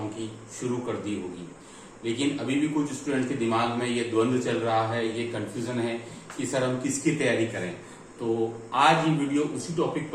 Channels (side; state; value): both; identical; correlation 1.00